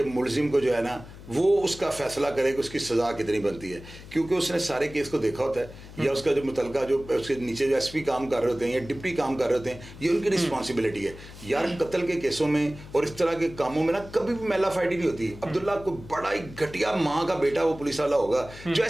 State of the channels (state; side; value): noise; left; hum, 16 dB below the sound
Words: मुलजिम को जो है ना वो उसका फैसला करे कि उसकी सजा कितनी बनती है, क्योंकि उसने सारे केस को देखा होता है, या उसका जो मुतलका जो उसके नीचे जो SP काम कर रहे होते हैं या डिप्टी काम कर रहे होते हैं, ये उनकी रिस्पॉन्सिबिलिटी है। यार कत्ल के केसों में और इस तरह के कामों में ना कभी भी मेला फाइटी नहीं होती। अब्दुल्ला को बड़ा ही घटिया माँ का बेटा वो पुलिस वाला होगा जो